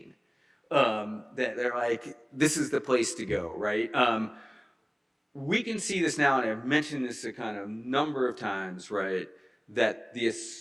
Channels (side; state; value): both; identical; correlation 1.00